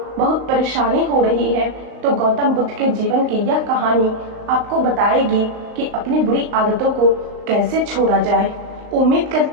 बहुत परेशानी हो रही है, तो गौतम बुद्ध के जीवन की यह कहानी आपको बताएगी कि अपनी बुरी आदतों को कैसे छोड़ा जाए। उम्मीद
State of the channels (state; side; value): late; left; 39 ms